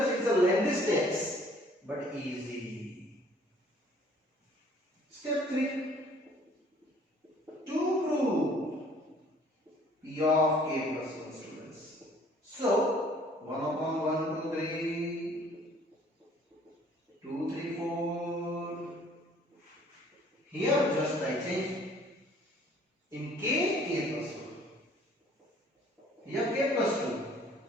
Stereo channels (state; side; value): normal; both; correlation 0.56